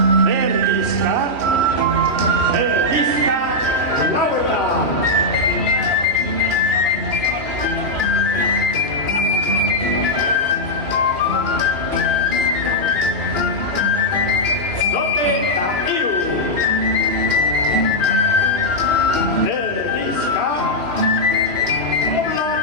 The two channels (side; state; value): left; late; 3.1 ms